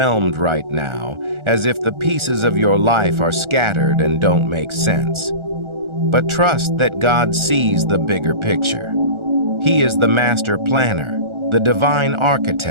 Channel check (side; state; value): left; late; 1.4 ms